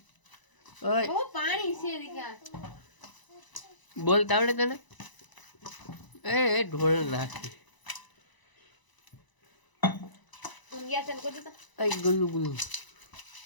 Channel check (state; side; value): late; right; 1.0 ms